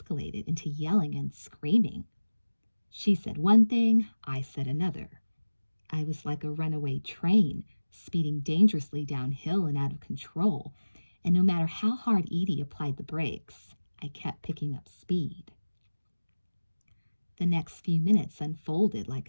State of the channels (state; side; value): inverted; both; correlation -1.00